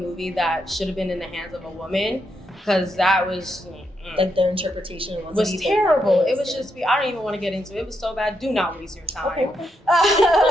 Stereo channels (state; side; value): normal; both; correlation 0.81